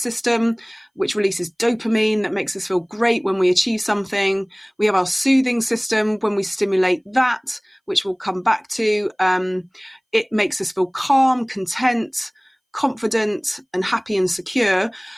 which releases dopamine that makes us feel great when we achieve something. We have our soothing system when we stimulate that, which we'll come back to. It makes us feel calm, content, confident and happy and secure.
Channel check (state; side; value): identical; both; correlation 1.00